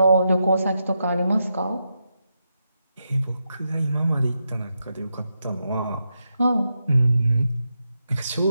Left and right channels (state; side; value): inverted; both; correlation -0.85